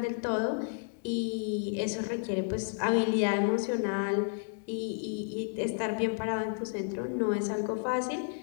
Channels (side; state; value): right; silent; 56 dB below the other